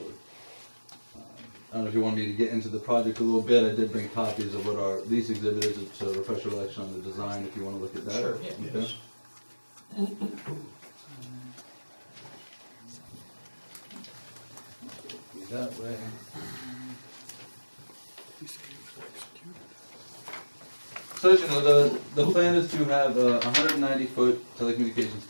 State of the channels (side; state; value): both; inverted; correlation -1.00